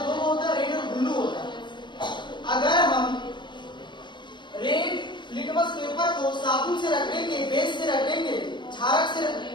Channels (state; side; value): late; right; 0.22 ms